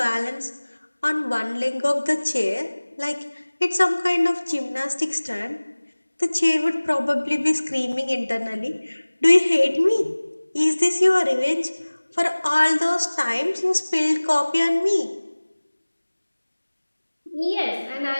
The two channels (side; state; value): both; inverted; correlation -1.00